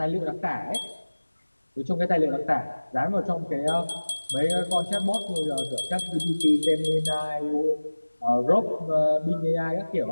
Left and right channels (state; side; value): inverted; both; correlation -1.00